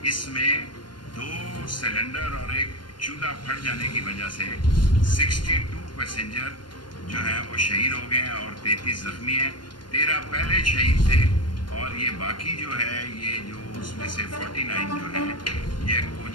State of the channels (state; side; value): late; right; 0.71 ms